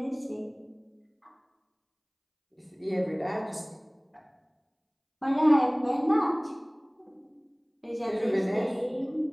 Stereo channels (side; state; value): both; identical; correlation 1.00